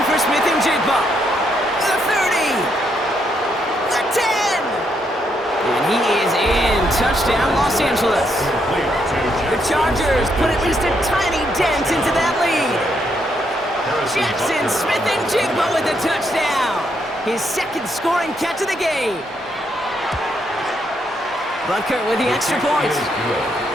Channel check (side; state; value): both; normal; correlation 0.76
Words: for Smith and Jigba. The 30. The 10. And he is in. Touchdown, Los Angeles. The Chargers put at least a tiny dent into that lead. Jackson Smith and Jigba with the touchdown. His 2nd scoring catch of the game. Butker with the extra point.